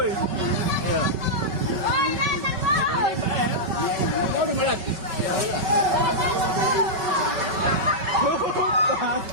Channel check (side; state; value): left; late; 5.3 ms